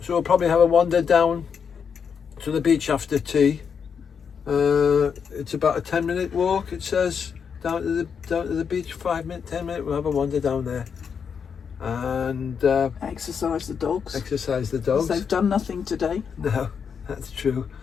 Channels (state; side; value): quieter; right; 6.7 dB